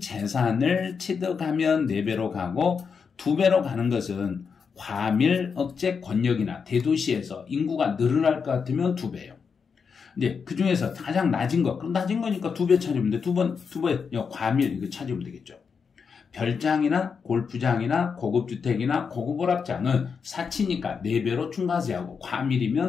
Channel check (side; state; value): right; quieter; 5.9 dB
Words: 취득하면 4배로 가고, 2배로 가는 것은 과밀 억제 권역이나 대도시에서 인구가 늘어날 것 같으면 2배예요. 이제 그 중에서 가장 낮은 거, 그럼 낮은 거니까 2배 찾으면 돼. 2배 과밀 이거 찾으면 되겠죠. 별장이나 골프장이나 고급주택이나 고급오락장은 사치니까 4배로 중과세하고,